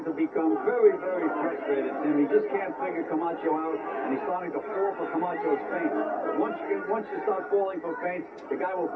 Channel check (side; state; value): both; identical; correlation 1.00